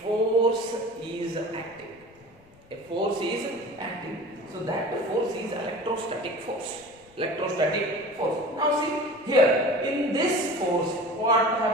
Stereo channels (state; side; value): noise; left; rumble, 29 dB below the sound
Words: force is acting. A force is acting. So that force is electrostatic force. Now see here, in this force, what